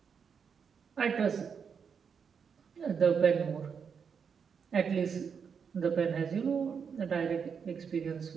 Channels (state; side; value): quieter; left; 6.5 dB